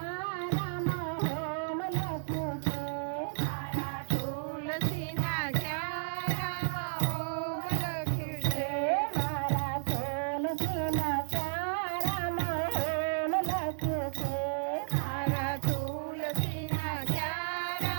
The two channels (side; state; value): left; silent; 56 dB below the other